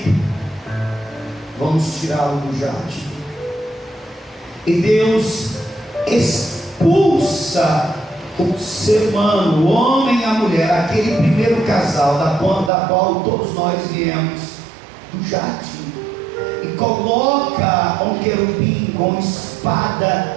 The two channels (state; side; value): drops out; left; at 12.7 s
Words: Vamos tirá-lo do jardim. E Deus expulsa o ser humano, o homem e a mulher, aquele primeiro casal da qual todos nós viemos, do jardim, e coloca um querubim com